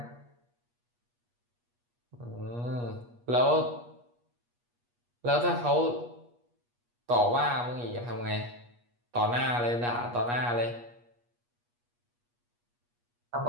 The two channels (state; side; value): late; left; 8.4 ms